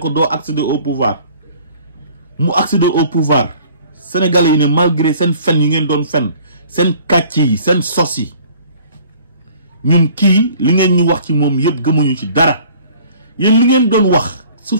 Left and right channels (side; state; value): both; inverted; correlation -0.52